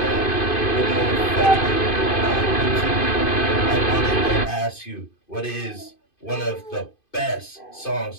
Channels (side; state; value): right; late; 2.5 ms